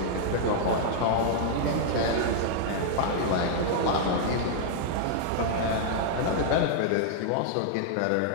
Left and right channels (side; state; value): both; different; correlation -0.01